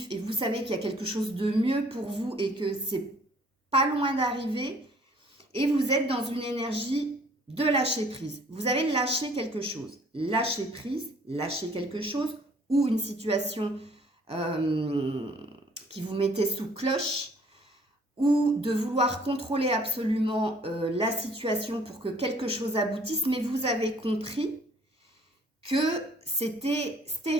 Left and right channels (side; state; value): both; normal; correlation 0.58